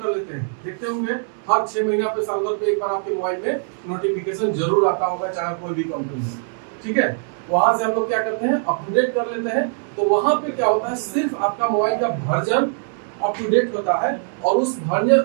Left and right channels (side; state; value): left; silent; 64 dB below the other